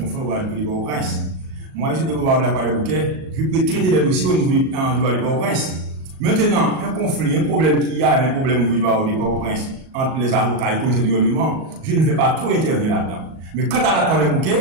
au barreau de Port-au-Prince. Moi, je suis au barreau de la Croix-des-Bouquets, je peux traiter des dossiers au niveau du barreau de Port-au-Prince. Maintenant, un conflit, un problème qu'il y a, un problème au niveau du barreau de Port-au-Prince entre les avocats et le commissaire du gouvernement, je ne vais pas trop intervenir là-dedans. Mais quant à la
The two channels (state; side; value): late; left; 38 ms